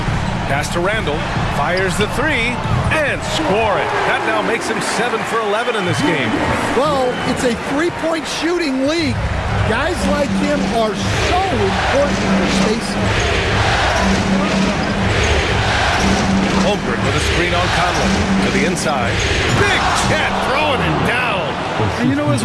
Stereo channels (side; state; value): both; identical; correlation 1.00